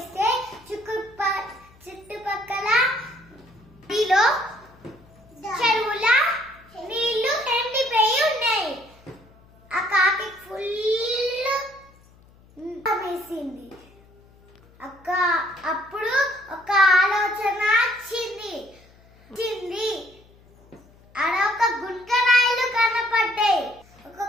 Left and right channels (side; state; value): left; noise; hum, 27 dB below the sound